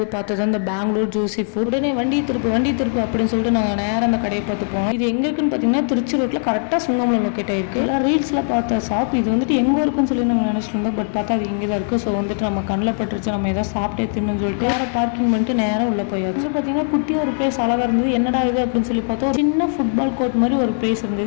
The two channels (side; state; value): right; silent; digital silence